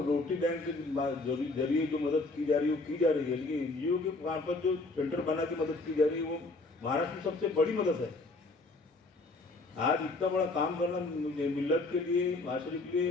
रोटी बैंक के जरिए जो मदद की जा रही है वो की जा रही है, लेकिन एनजीओ के मार्फत जो सेंटर बना के मदद की जा रही है वो महाराष्ट्र में सबसे बड़ी मदद है. आज इतना बड़ा काम करना मिल्लत के लिए, माशरे के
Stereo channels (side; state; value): right; quieter; 3.2 dB